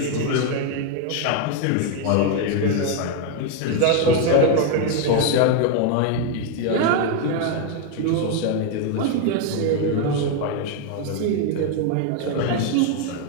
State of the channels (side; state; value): both; different; correlation 0.01